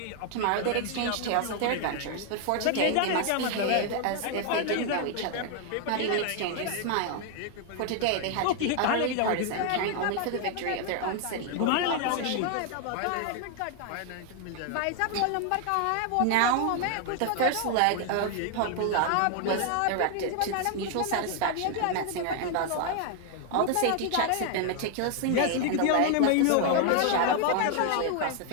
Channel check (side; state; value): both; different; correlation 0.00